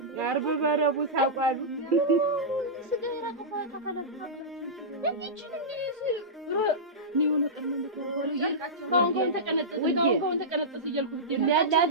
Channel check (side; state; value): both; normal; correlation -0.14